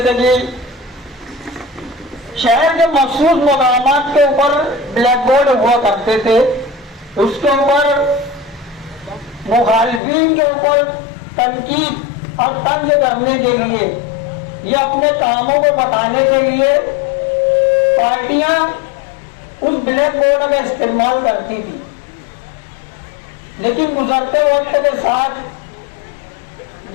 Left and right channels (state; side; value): drops out; right; at 10.0 s